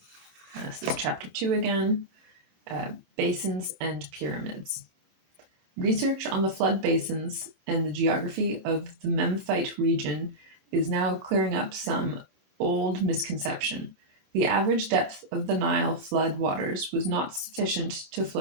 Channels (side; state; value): left; late; 27 ms